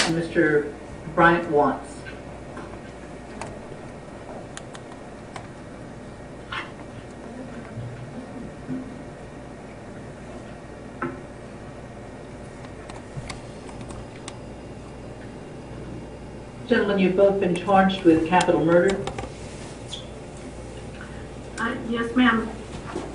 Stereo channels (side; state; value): both; identical; correlation 1.00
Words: and Mr. Bryant Watts. Gentlemen, you've both been charged with capital murder. Yes, ma'am.